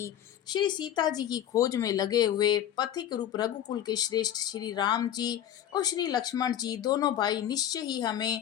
श्री सीता जी की खोज में लगे हुए पथिक रूप रघुकुल के श्रेष्ठ श्री राम जी और श्री लक्ष्मण जी दोनों भाई निश्चय ही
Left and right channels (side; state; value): right; quieter; 11.0 dB